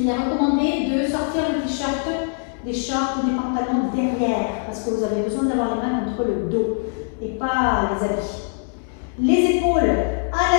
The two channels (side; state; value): right; silent; 61 dB below the other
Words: est recommandé de sortir le t-shirt, des shorts ou des pantalons derrière parce que vous avez besoin d'avoir les mains contre le dos et pas les habits. Les épaules à